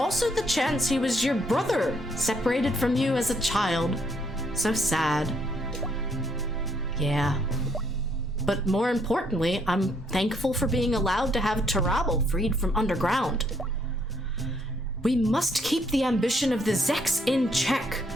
the chance he was your brother, separated from you as a child. So sad. Yeah. But more importantly, I'm thankful for being allowed to have Tarabal freed from underground. We must keep the ambition of the Zeks in check.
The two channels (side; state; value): both; normal; correlation 0.70